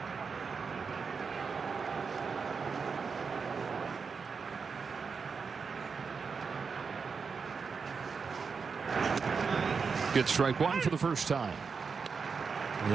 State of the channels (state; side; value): quieter; left; 5.4 dB